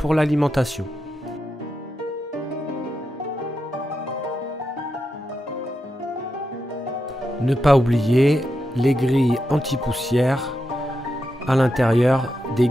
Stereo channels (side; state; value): both; normal; correlation 0.87